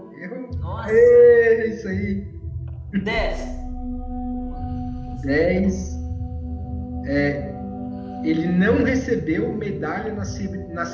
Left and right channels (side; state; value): both; identical; correlation 1.00